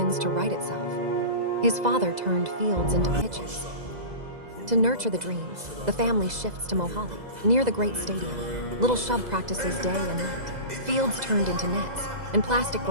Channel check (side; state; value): left; late; 2.0 ms